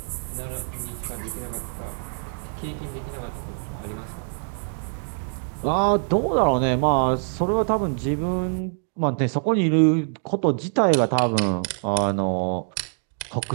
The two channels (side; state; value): left; silent; 62 dB below the other